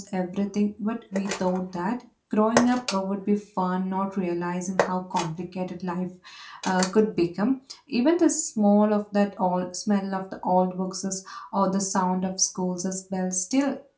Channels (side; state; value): both; identical; correlation 1.00